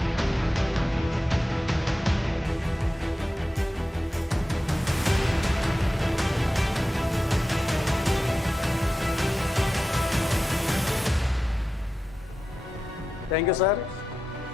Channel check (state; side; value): normal; both; correlation 0.91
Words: థ్యాంక్ యూ సార్.